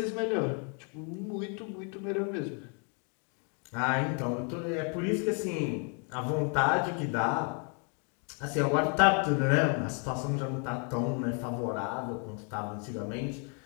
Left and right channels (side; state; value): right; quieter; 39.5 dB